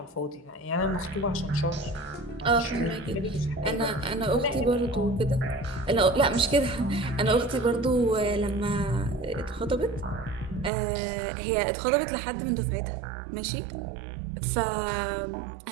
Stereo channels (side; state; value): left; drops out; at 10.7 s